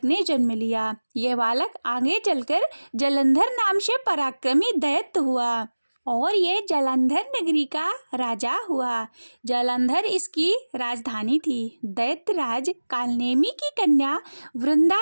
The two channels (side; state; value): both; inverted; correlation -1.00